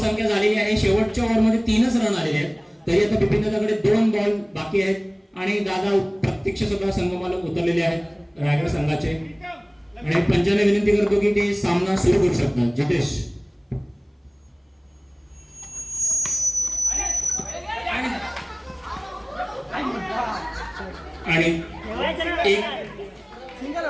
झालेली आहे. शेवटच्या ओव्हरमध्ये 3च रन आलेले आहेत. तरी आता बिपिन दादाकडे 2 बॉल बाकी आहेत आणि दादा प्रत्यक्ष सुद्धा संगमाला उतरलेले आहेत रायगड संघाचे. आणि पंचाने विनंती करतो की ते सामना सुरू करू शकतात. जितेश आणि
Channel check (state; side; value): identical; both; correlation 1.00